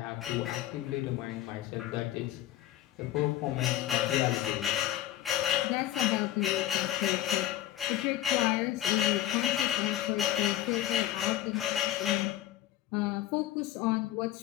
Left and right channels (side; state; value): right; quieter; 13.4 dB